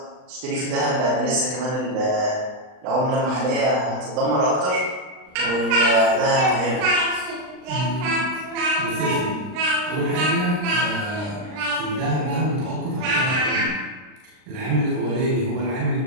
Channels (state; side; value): late; left; 39 ms